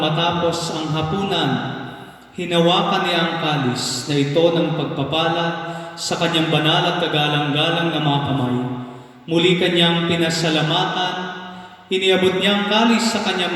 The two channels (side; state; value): both; identical; correlation 1.00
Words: matapos ang hapunan, hinawakan niya ang kalis na ito ng pagpapala sa kanyang banal at kagalang-galang na mga kamay. Muli kanyang pinasalamatan, iniabot niya ang kalis sa kanyang